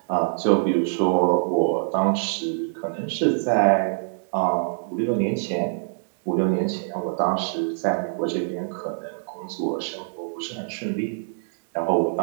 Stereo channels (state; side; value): silent; left; digital silence